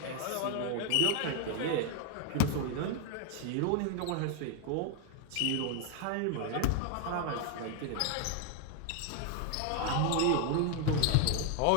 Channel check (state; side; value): different; both; correlation 0.00